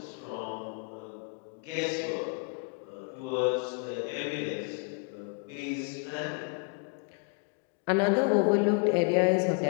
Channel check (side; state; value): right; quieter; 36.1 dB